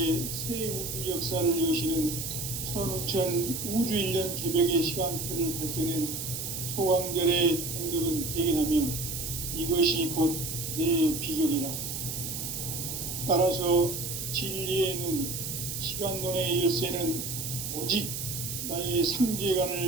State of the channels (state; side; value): noise; right; hiss, 5 dB below the sound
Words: 새 우주 역사를 여시는 선우천 우주 1년 개벽의 시간틀을 밝혀낸 소강절의 공덕은 대견하며 이것이 곧 내 비결이라. 따라서 진리의 눈, 시간론의 열쇠는 오직 나의